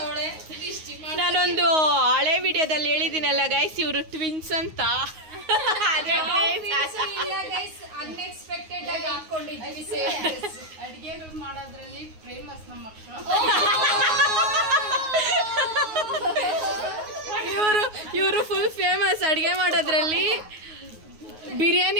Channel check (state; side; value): late; left; 9.5 ms